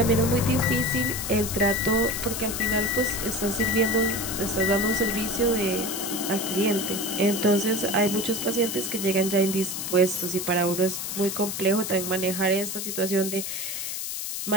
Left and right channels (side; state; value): left; noise; hiss, 4 dB below the sound